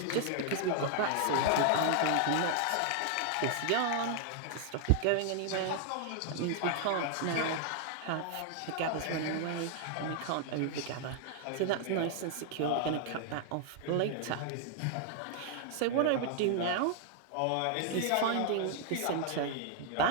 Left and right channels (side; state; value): both; different; correlation 0.00